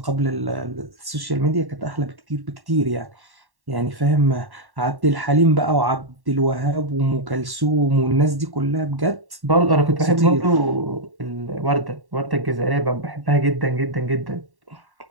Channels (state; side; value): late; left; 1.1 ms